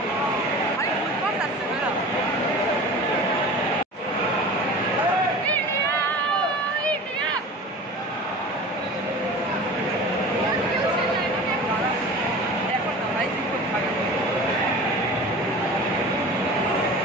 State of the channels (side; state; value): both; normal; correlation 0.37